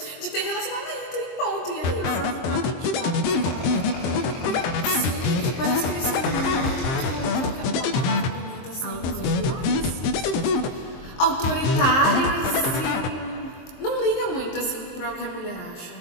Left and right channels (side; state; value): right; late; 23 ms